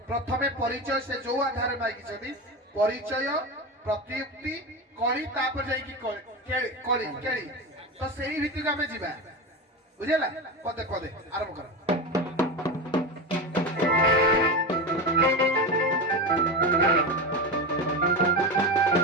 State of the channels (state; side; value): normal; both; correlation 0.20